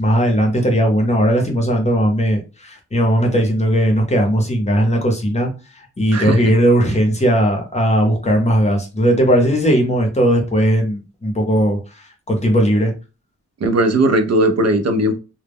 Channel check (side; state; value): both; normal; correlation 0.63